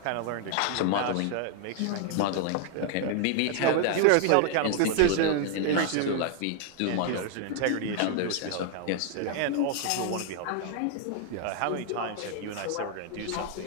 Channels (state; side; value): different; both; correlation 0.00